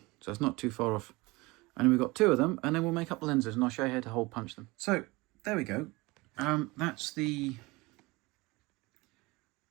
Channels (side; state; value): left; quieter; 23.1 dB